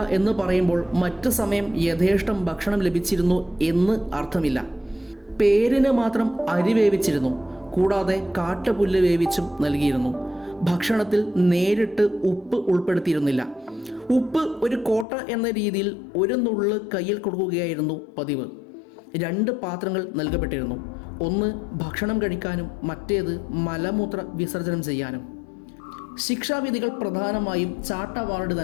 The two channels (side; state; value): right; drops out; at 15.1 s